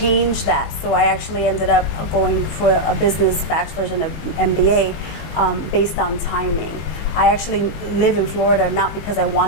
that, so I actually ended up going for a business bachelor's and an MBA based on timing. I actually live in Florida not because I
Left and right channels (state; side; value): late; right; 20 ms